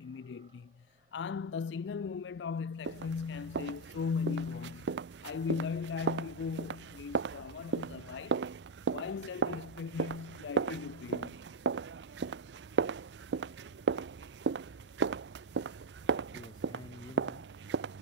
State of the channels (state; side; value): normal; both; correlation 0.04